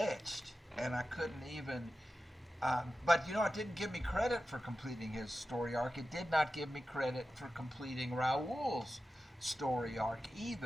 and I couldn't even. But you know, it didn't give me credit for completing his story arc. It did not give me credit for completing Raoul's story arc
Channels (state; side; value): normal; both; correlation 0.93